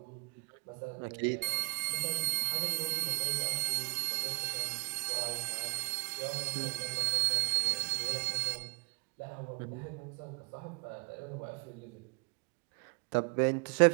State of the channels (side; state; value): left; quieter; 30.8 dB